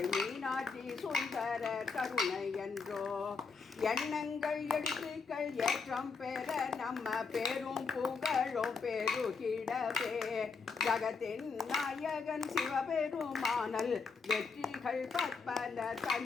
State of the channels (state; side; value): quieter; right; 4.9 dB